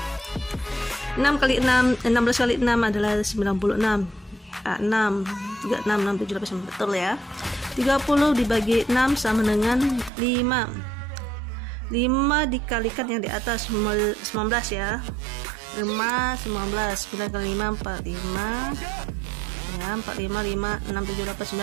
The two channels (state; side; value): drops out; left; at 10.1 s